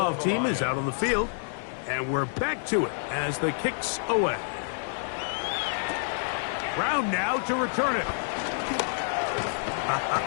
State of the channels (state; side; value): silent; right; 59 dB below the other